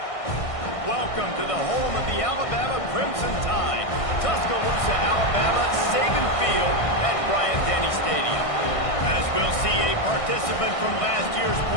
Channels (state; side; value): late; right; 1.6 ms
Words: Welcome to the home of the Alabama Crimson Tide. Tuscaloosa, Alabama, Saban Field at Bryant-Denny Stadium. As we'll see a participant from last year's